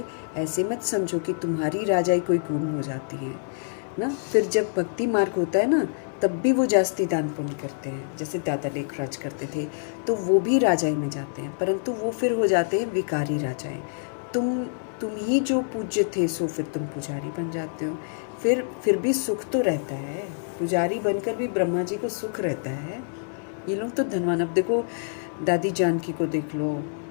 ऐसे मत समझो कि तुम्हारी राजाएं कोई गुम हो जाती हैं ना। फिर जब भक्ति मार्ग होता है ना, तब भी वो जास्ती दान पुण्य करते हैं, जैसे दादा लेखराज करते थे, तो वो भी राजाई में जाते हैं, परंतु वो फिर हो जाते हैं विकारी राजाएं। तुम ही जो पूज्य थे, सो फिर तुम पुजारी बन जाते हो। फिर भी सुख तो रहता है, पुजारी बनकर भी ब्रह्मा जी को सुख रहता है। ये लोग तो धनवान। अब देखो, दादी जानकी को देख लो,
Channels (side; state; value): right; silent; digital silence